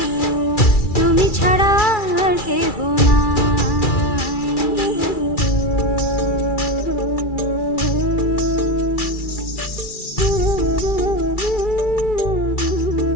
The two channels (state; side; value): late; right; 2.3 ms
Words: তুমি ছাড়া আর কেহ নাই।